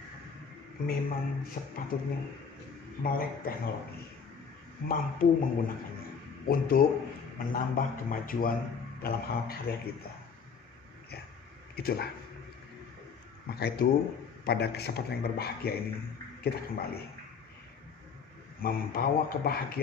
memang sepatutnya melek teknologi, mampu menggunakannya untuk menambah kemajuan dalam hal karya kita. Ya, itulah. Maka itu pada kesempatan yang berbahagia ini kita kembali membawa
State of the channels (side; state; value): right; quieter; 6.0 dB